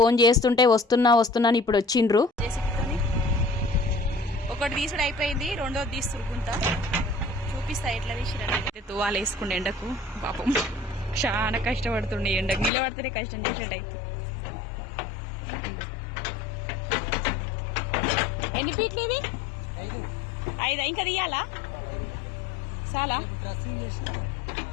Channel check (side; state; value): right; drops out; at 12.7 s